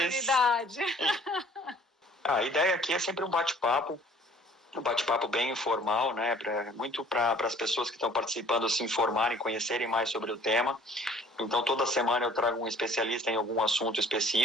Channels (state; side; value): normal; both; correlation 0.54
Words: Oportunidade. A ideia aqui é sempre um bate-papo bem informal, né? Muito para as pessoas que estão participando se informarem, conhecerem mais sobre o tema. Então, toda semana eu trago um especialista em algum assunto